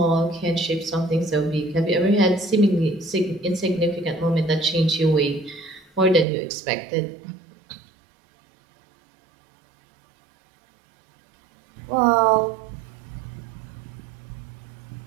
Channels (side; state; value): left; drops out; at 6.2 s